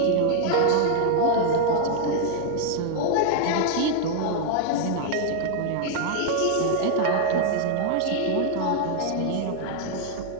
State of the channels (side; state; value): both; different; correlation 0.00